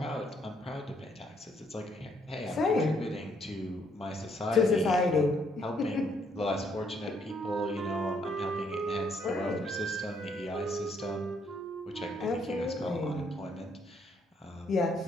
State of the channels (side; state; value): both; normal; correlation 0.70